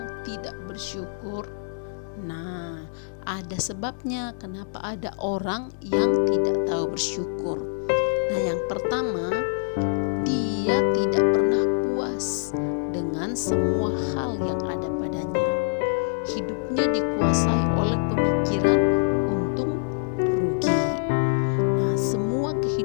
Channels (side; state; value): right; silent; digital silence